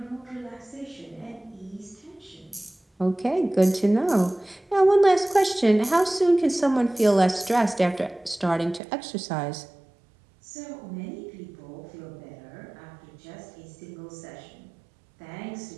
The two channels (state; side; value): drops out; left; at 8.8 s